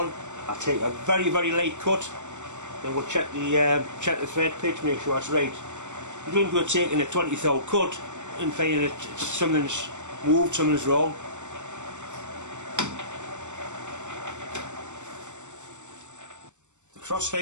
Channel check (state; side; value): late; left; 0.84 ms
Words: I take a very light cut. Then we'll check the thread pitch, make sure it's right. You don't go taking a 20th cut and finding that something's moved, something's wrong. The cross